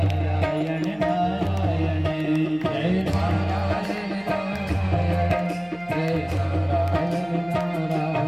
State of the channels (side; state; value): left; noise; hum, 27 dB below the sound